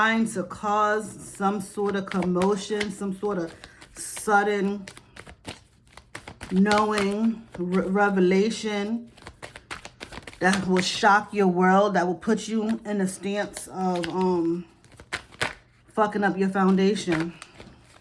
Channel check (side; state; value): both; identical; correlation 1.00